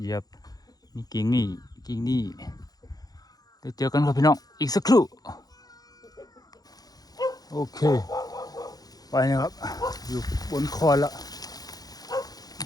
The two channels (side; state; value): right; late; 0.19 ms